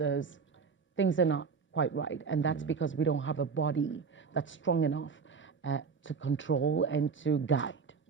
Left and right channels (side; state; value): left; quieter; 5.6 dB